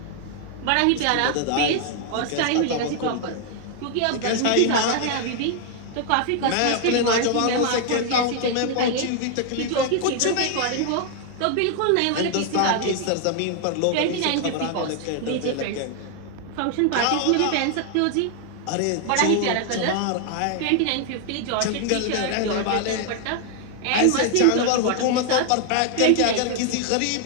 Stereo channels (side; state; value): both; different; correlation 0.00